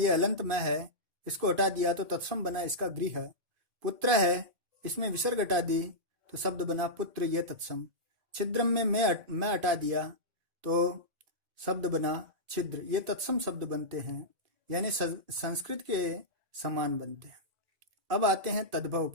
अलंत मैं है, इसको हटा दिया तो तत्सम बना इसका गृह। पुत्र है, इसमें विसर्ग हटा दी तो शब्द बना पुत्र, ये तत्सम। छिद्रम में मैं हटा दिया तो शब्द बना छिद्र, ये तत्सम शब्द बनते हैं, यानी संस्कृत के समान बनते हैं। अब आते हैं तद्भव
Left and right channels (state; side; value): late; left; 2.5 ms